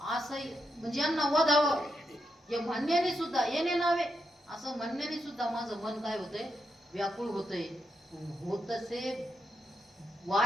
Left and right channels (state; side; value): normal; both; correlation 0.83